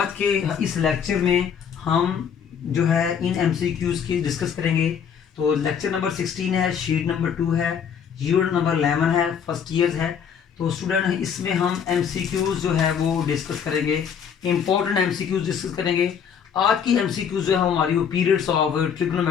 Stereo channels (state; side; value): quieter; right; 7.5 dB